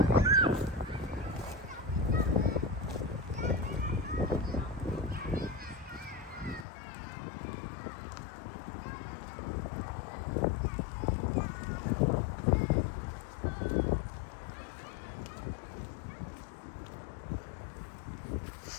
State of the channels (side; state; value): right; drops out; at 6.7 s